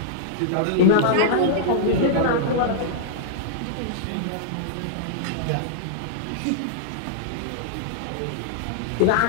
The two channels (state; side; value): different; both; correlation -0.02